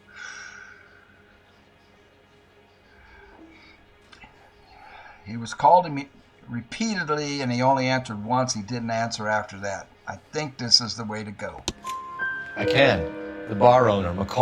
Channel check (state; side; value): identical; both; correlation 1.00